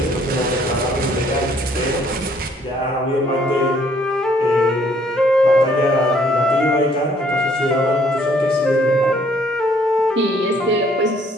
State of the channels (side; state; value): both; normal; correlation 0.63